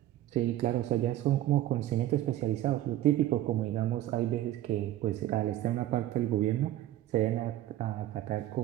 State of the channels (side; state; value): left; quieter; 13.8 dB